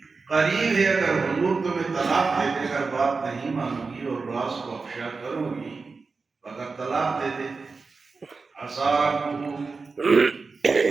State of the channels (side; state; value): left; quieter; 4.4 dB